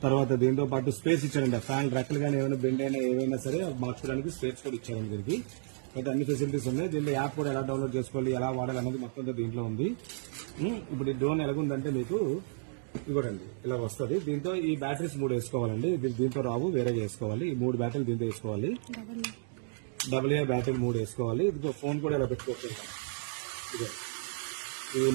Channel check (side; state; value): left; silent; digital silence